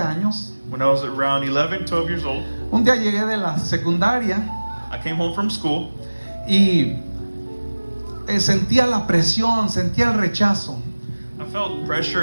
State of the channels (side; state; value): both; inverted; correlation -1.00